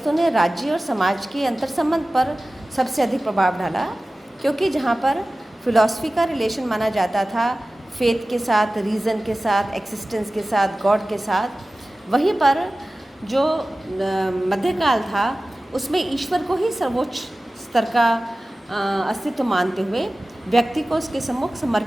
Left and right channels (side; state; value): both; normal; correlation 0.96